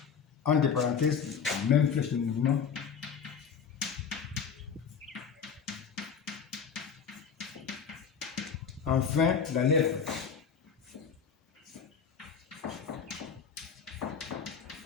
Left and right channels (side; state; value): right; quieter; 6.7 dB